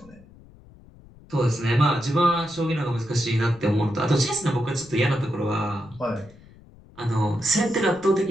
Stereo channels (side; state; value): left; noise; rumble, 24 dB below the sound